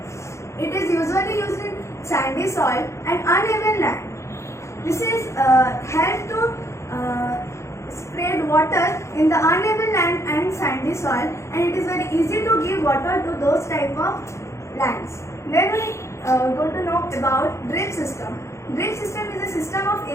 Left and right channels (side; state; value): right; late; 0.14 ms